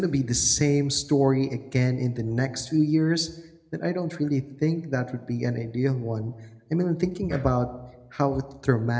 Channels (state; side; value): identical; both; correlation 1.00